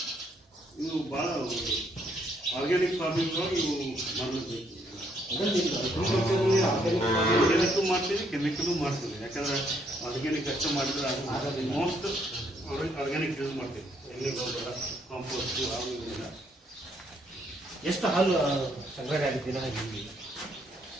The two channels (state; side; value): normal; both; correlation 0.70